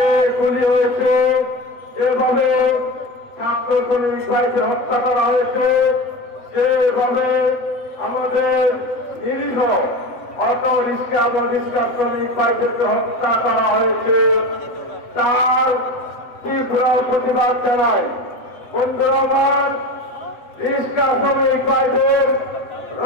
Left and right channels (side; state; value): right; late; 7.8 ms